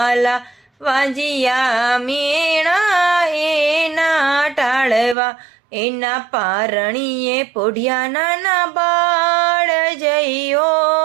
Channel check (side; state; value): left; drops out; at 5.2 s